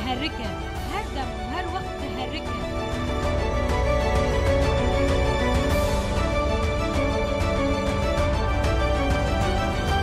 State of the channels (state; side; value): identical; both; correlation 1.00